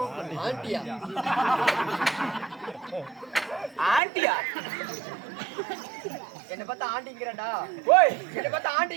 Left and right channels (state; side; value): drops out; left; at 4.0 s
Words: ஆண்டியா ஆண்டியா என்ன பார்த்தா ஆண்டிங்கிறடா. ஓய், என்ன பார்த்தா